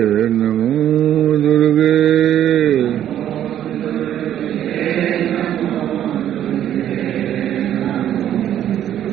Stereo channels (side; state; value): left; quieter; 11.0 dB